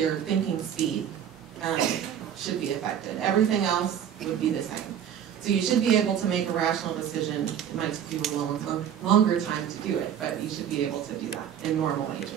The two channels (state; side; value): quieter; left; 9.2 dB